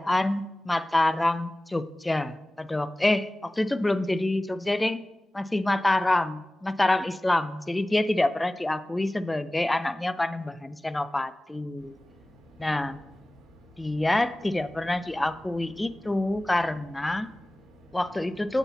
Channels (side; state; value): both; normal; correlation 0.97